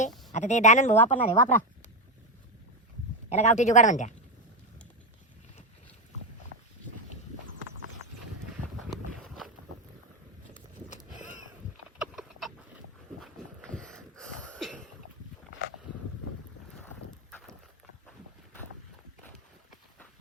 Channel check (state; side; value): normal; both; correlation 0.09